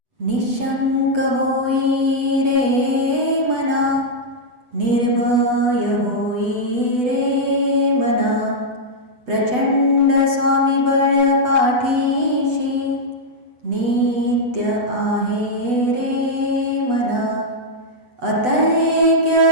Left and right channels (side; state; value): left; late; 8.1 ms